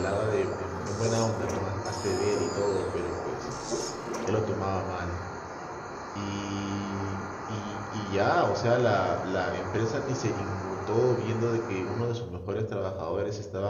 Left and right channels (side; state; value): both; identical; correlation 1.00